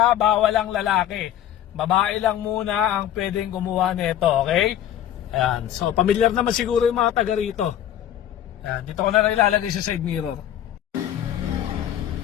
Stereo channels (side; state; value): right; quieter; 11.3 dB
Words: bawal ang lalaki. Babae lang muna ang pwedeng kumuha nito, okay? Ayan, so familiar naman siguro yung mga taga rito. Ayan, dito ko na lang ilalagay sa side mirror.